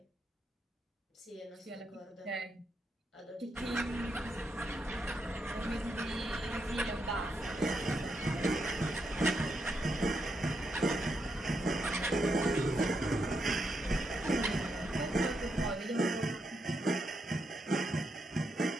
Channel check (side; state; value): both; normal; correlation 0.81